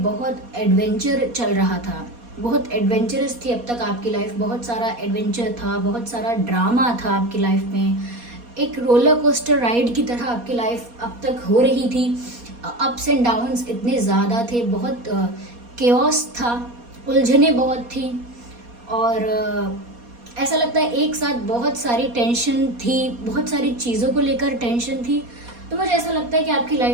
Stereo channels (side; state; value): left; late; 4.2 ms